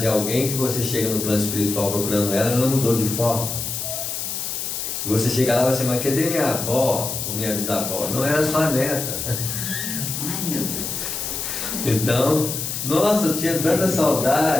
de alguém que você chega no plano espiritual procurando ela mudou de forma. E você chega lá e vai assim, mas cadê minha avó ou minha bisavó? Não era sua neta. Ai, meu Deus. Então, nossa, eu tinha tanta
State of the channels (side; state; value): left; noise; hiss, 4 dB below the sound